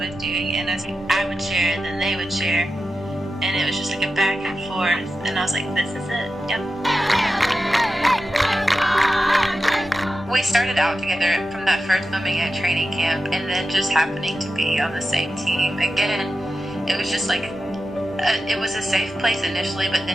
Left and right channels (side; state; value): both; normal; correlation 0.91